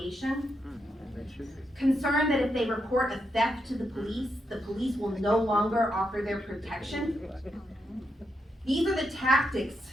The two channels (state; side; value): normal; both; correlation 0.83